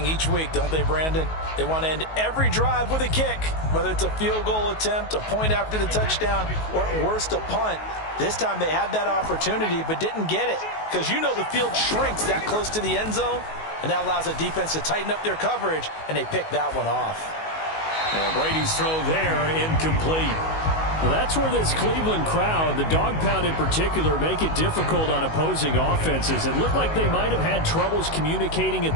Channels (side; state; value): right; late; 19 ms